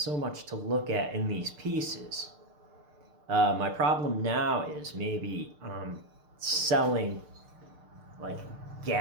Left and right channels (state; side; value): late; left; 6.7 ms